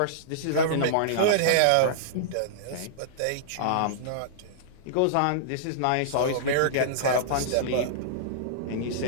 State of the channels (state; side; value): different; both; correlation -0.02